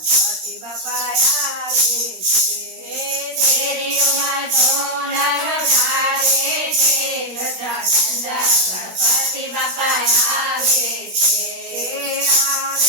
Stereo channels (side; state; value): left; late; 16 ms